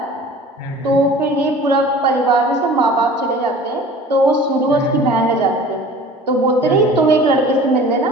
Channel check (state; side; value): normal; both; correlation 0.44